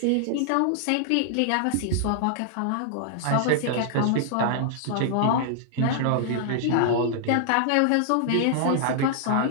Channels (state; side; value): different; both; correlation -0.01